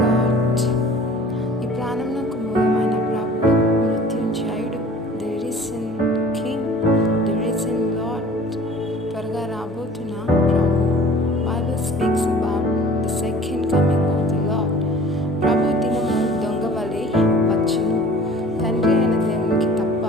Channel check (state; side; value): normal; both; correlation 0.46